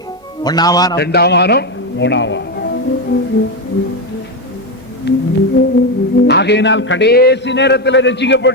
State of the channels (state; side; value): normal; both; correlation 0.09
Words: 1ஆம் வானம், 2ஆம் வானம், 3ஆம் வானம். ஆகையினால் கடைசி நேரத்தில்